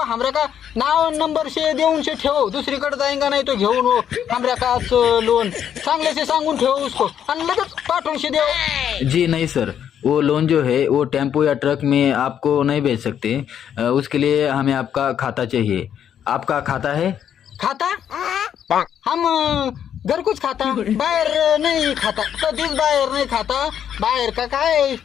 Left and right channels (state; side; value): quieter; right; 9.2 dB